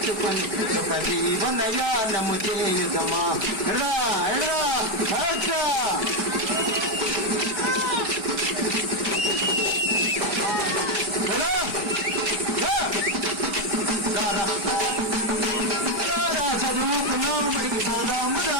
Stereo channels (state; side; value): late; left; 4.7 ms